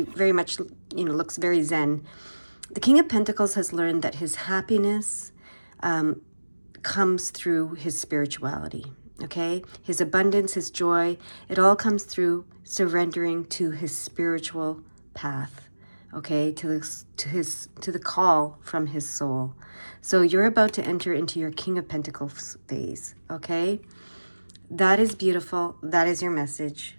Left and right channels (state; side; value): inverted; both; correlation -1.00